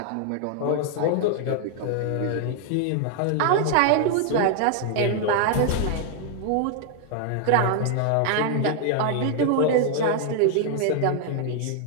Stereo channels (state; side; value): different; both; correlation 0.00